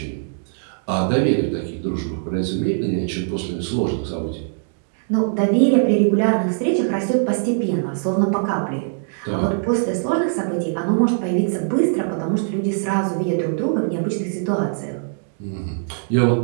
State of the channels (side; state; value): left; silent; digital silence